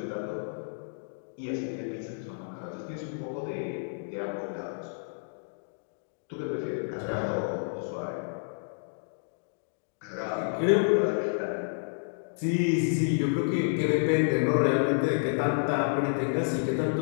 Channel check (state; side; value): silent; right; digital silence